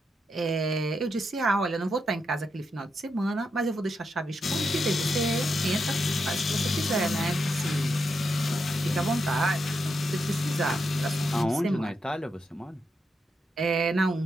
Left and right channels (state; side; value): normal; both; correlation 0.84